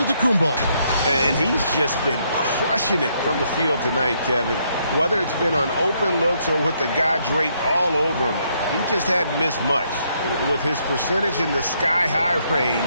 And he's just been crushing it from the field tonight, Kevin. Whether it's been on open looks or with the guy draped all over him, he just hadn't missed much. With his percentage in the sky-high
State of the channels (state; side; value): inverted; both; correlation -0.73